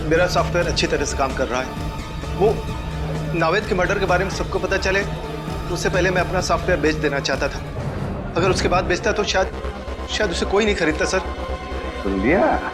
मेरा सॉफ्टवेयर अच्छी तरह से काम कर रहा है। वो नावेद के मर्डर के बारे में सबको पता चले उससे पहले मैं अपना सॉफ्टवेयर बेच देना चाहता था। अगर उसके बाद बेचता तो शायद उसे कोई नहीं खरीदता सर। सुन लिया?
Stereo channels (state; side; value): identical; both; correlation 1.00